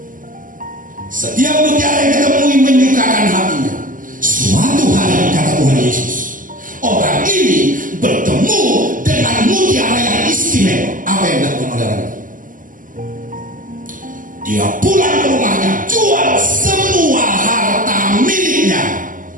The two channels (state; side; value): late; left; 0.39 ms